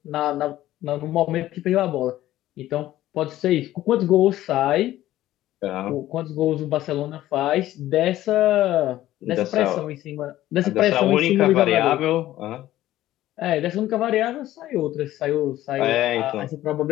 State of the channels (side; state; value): right; quieter; 14.4 dB